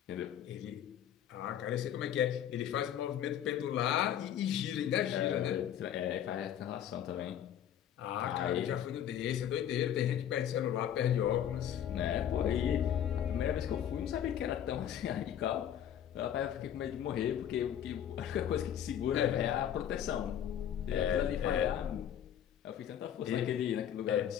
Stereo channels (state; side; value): quieter; right; 10.0 dB